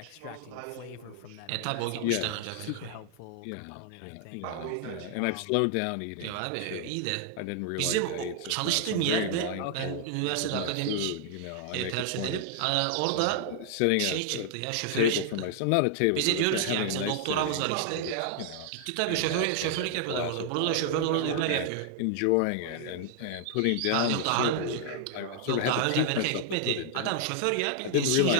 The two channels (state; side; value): different; both; correlation 0.00